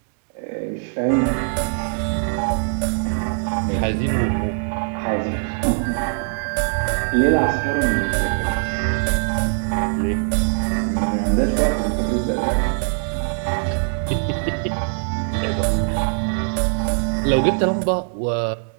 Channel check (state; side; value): silent; left; digital silence